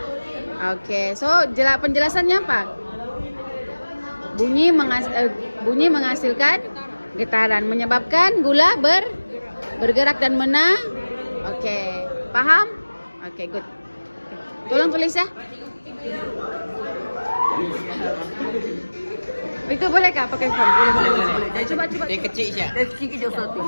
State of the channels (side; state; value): both; inverted; correlation -1.00